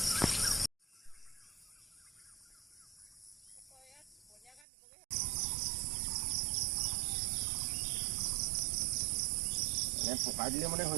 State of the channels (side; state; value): left; drops out; at 4.7 s